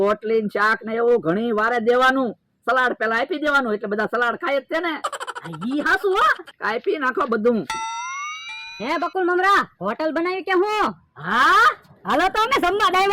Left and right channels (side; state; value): both; identical; correlation 1.00